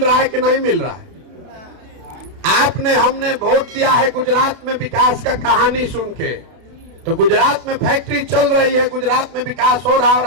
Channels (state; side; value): late; left; 31 ms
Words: रहा है कि नहीं मिल रहा है? हमने वोट दिया है गुजरात में विकास का कहानी सुन के, तो गुजरात में फैक्ट्री चल रही है, गुजरात में विकास हो रहा है, और